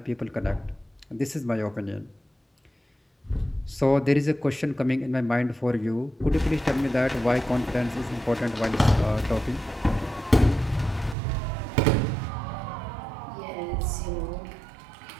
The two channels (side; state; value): left; drops out; at 11.2 s